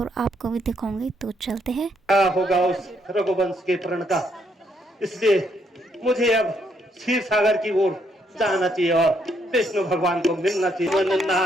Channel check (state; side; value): normal; both; correlation 0.73